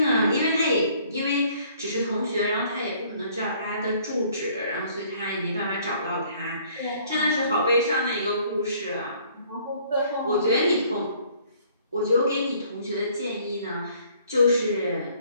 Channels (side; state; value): both; inverted; correlation -0.60